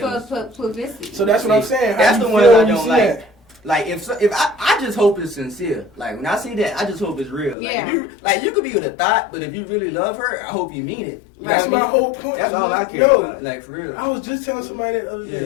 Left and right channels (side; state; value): right; drops out; at 7.6 s